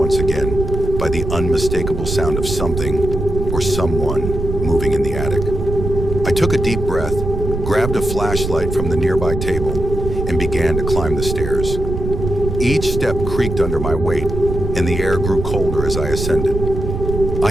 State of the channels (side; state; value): right; noise; rumble, 4 dB below the sound